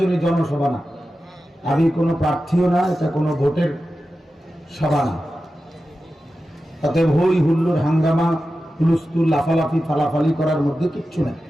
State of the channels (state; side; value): normal; both; correlation 0.93